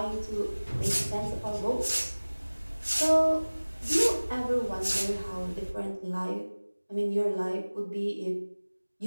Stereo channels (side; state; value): both; inverted; correlation -1.00